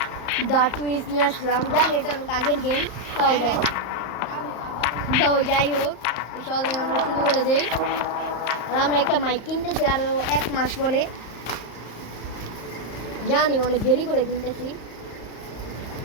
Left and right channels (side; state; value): right; late; 34 ms